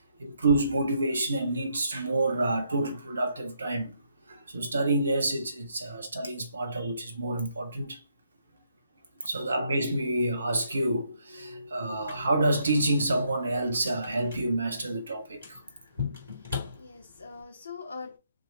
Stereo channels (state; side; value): inverted; both; correlation -0.74